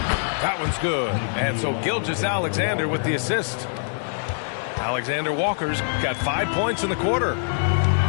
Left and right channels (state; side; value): silent; right; 63 dB below the other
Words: That one's good. And so Gilgeous-Alexander with the assist. Alexander Walker's got 5 points in the quarter.